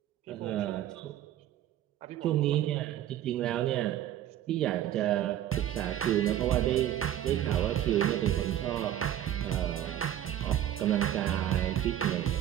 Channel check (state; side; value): quieter; left; 11.8 dB